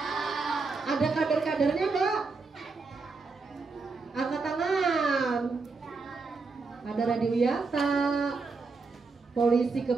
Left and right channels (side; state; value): left; quieter; 4.2 dB